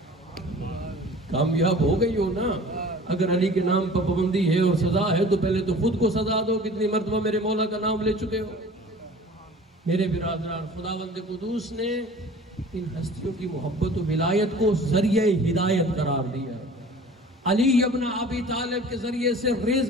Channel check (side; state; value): both; normal; correlation 0.44